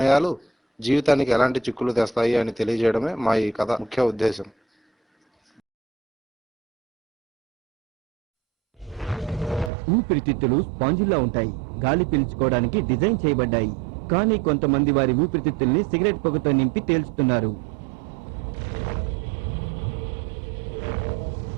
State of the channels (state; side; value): drops out; left; at 9.7 s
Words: జీవితానికి ఎలాంటి చిక్కులు తెస్తాయి అని తెలియజేయడమే మా ఈ కథ ముఖ్య ఉద్దేశం. ఊపిరితిత్తులు స్పాంజిల్లా ఉంటాయి. గాలి పీల్చుకోవడానికి డిజైన్ చేయబడ్డాయి. కానీ కొంతమంది వారి ఊపిరితిత్తుల్ని సిగరెట్ పొగతో నింపి తేల్చుతున్నారు.